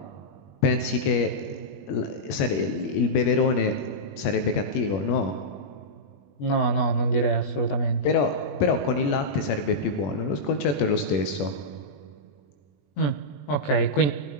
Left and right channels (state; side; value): late; right; 21 ms